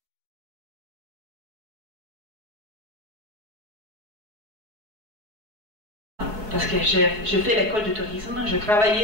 Parce que je fais l'école de tourisme, je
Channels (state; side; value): late; left; 4.7 ms